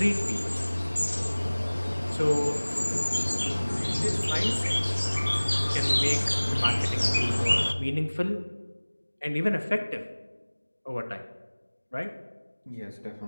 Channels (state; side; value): inverted; both; correlation -1.00